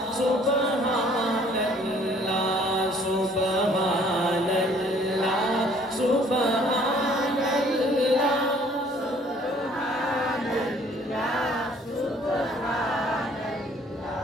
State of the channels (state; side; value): normal; both; correlation 0.58